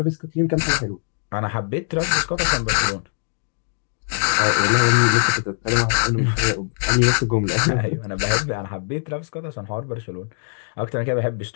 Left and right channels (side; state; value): right; silent; digital silence